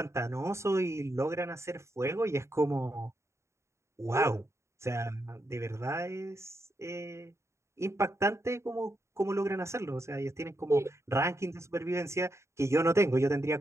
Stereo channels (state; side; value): late; left; 0.14 ms